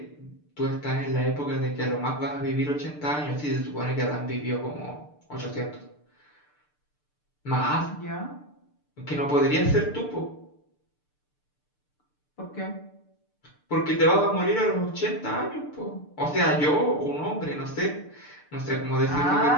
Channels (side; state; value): right; late; 6.8 ms